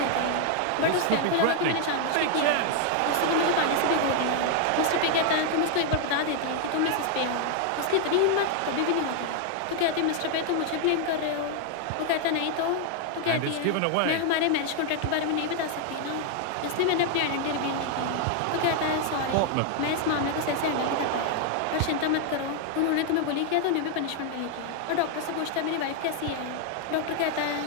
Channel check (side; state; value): both; different; correlation 0.00